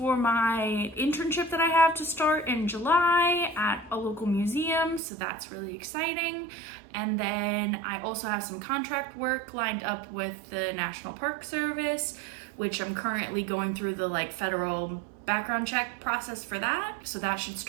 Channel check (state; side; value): drops out; left; at 5.0 s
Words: my internship that I have to start in July at a local museum, so that's really exciting. And then I also have some contract work lined up with the National Park Service, which I'm currently going through the federal background check process for that. So that should